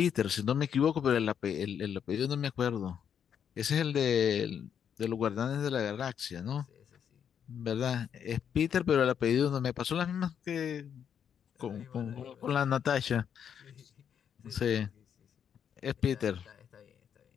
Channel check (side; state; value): right; quieter; 8.2 dB